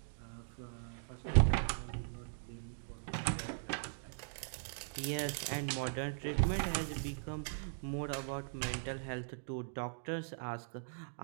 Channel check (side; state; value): left; silent; digital silence